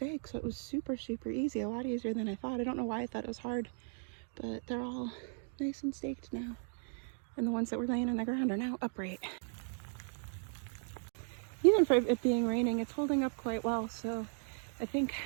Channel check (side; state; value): left; silent; 53 dB below the other